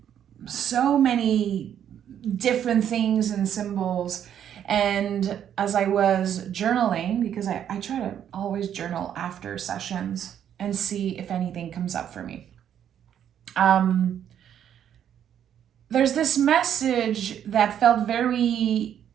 so many different things and symbols. And as I was journaling, because I try to always journal after sessions and see if anything comes up for me. There's this message that felt very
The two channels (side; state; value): left; quieter; 9.6 dB